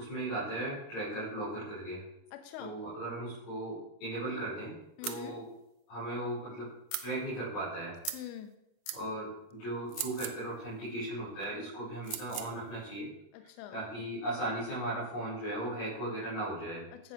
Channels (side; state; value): right; late; 29 ms